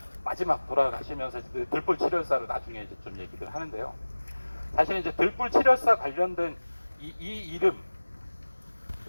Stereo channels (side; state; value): both; inverted; correlation -1.00